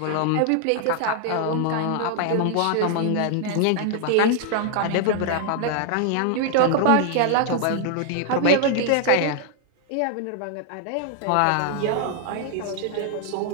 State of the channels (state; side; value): different; both; correlation 0.00